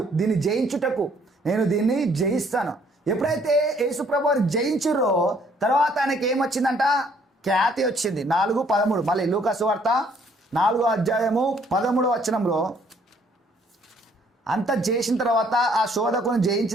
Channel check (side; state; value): both; normal; correlation 0.63